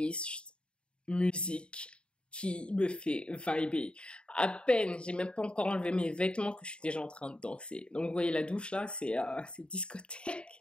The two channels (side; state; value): right; late; 0.054 ms